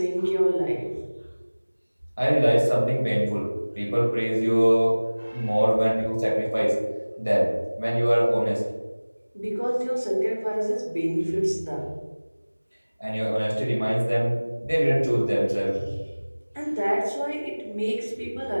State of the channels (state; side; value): inverted; both; correlation -1.00